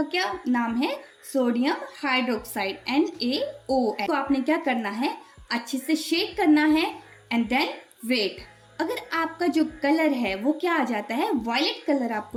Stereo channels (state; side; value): identical; both; correlation 1.00